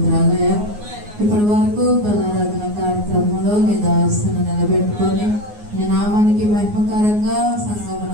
ఇప్పటి వరకు బలారాధన కార్యక్రమంలో నీ దాసును నిలబెట్టుకొని నీ నామానికి మహిమకరంగా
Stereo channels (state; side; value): late; left; 9.6 ms